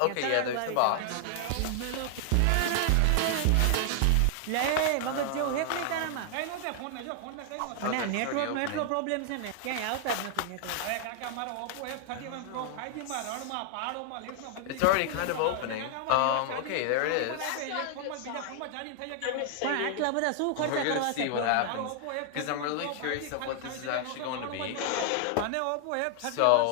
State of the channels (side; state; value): both; different; correlation 0.00